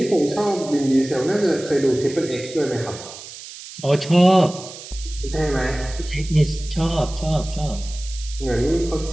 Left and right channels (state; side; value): noise; right; hiss, 14 dB below the sound